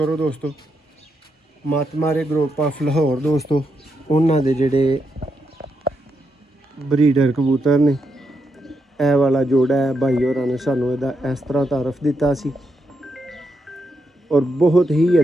ਦੋਸਤੋ, ਮਤ ਮਾਰੇ ਗਰੁੱਪ ਆਫ ਲਾਹੌਰ ਦੋਸਤੋ, ਉਹਨਾਂ ਦੇ ਜਿਹੜੇ ਬਰੀਡਰ ਕਬੂਤਰ ਨੇ। ਇਹ ਵਾਲਾ ਜੋੜਾ ਹੈ, ਭਾਈ ਹੋਰਾਂ ਨੇ ਸਾਨੂੰ ਇਹਦਾ ਇਸ ਤਰ੍ਹਾਂ ਤਾਰਫ ਦਿੱਤਾ ਸੀ ਔਰ ਬਹੁਤ ਹੀ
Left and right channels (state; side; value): normal; both; correlation 0.82